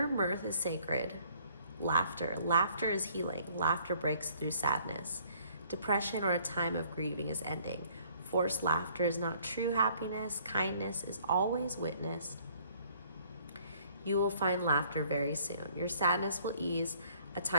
mirth is sacred. Laughter is healing. Laughter breaks through sadness. Depression or a time of grieving is ending. Forced laughter is not true happiness. Kindness is always witnessed. You will find laughter very soon. Your sadness will ease. A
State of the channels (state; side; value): inverted; both; correlation -0.60